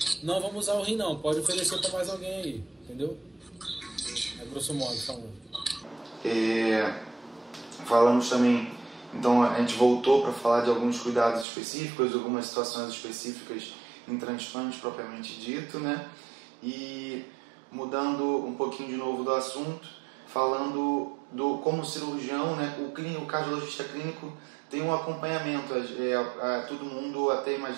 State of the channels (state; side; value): drops out; left; at 11.5 s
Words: não vamos usar o rim não, pode oferecer para mais alguém aí, entendeu? É grosso modo falando. Falamos também, então a gente voltou para falar de alguns cuidados específicos, algumas situações específicas em transplante propriamente dito, né? E mudando um pouquinho de novo do assunto, falando como cirurgião, né? O cardiologista clínico tem um acompanhamento, todo mundo até